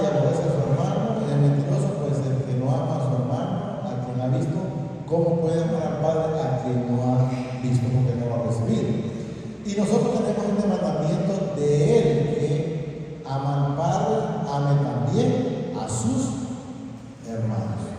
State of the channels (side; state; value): both; identical; correlation 1.00